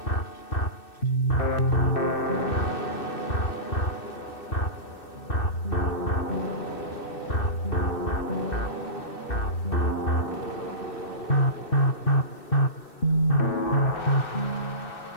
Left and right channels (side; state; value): right; late; 2.6 ms